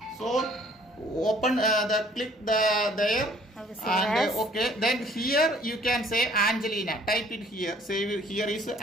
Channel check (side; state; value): both; normal; correlation 0.57